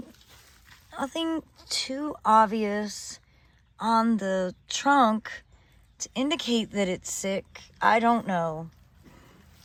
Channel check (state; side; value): identical; both; correlation 1.00